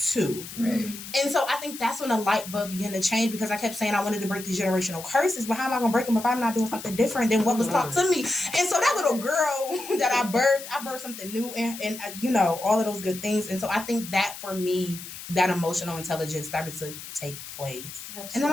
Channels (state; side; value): noise; left; hiss, 12 dB below the sound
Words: Right. And so I think that's when the light bulb began to change, because I kept saying I wanted to break these generational curses, but how am I going to break them if I'm not doing something different than what was taught to me? And so that little girl that I birthed something new and all of those good things. And so I think that for me, that emotional intelligence started to take place. Absolutely. And then